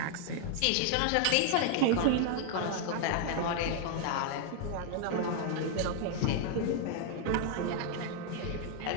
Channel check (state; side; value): different; both; correlation 0.00